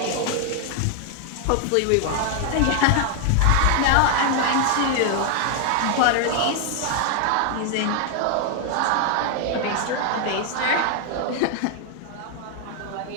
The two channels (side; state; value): both; different; correlation 0.00